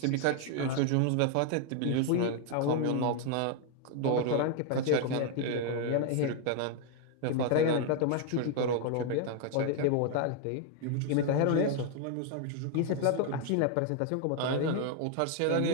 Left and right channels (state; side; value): different; both; correlation 0.00